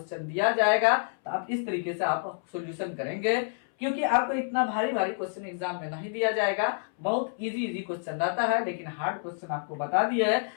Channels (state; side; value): silent; right; 59 dB below the other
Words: दिया जाएगा तो आप इस तरीके से आप सॉल्यूशन करेंगे, क्योंकि आपको इतना भारी क्वेश्चन एग्जाम में नहीं दिया जाएगा। बहुत इजी क्वेश्चन रहता है, लेकिन हार्ड क्वेश्चन आपको बता दिया है